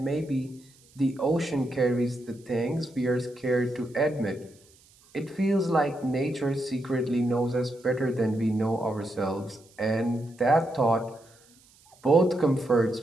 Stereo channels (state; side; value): noise; right; hiss, 29 dB below the sound